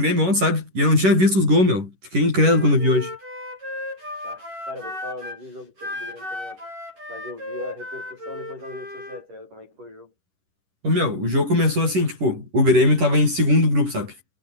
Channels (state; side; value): late; left; 11 ms